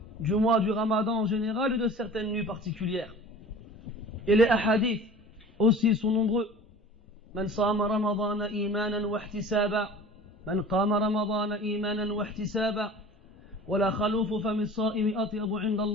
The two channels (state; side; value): normal; both; correlation 0.41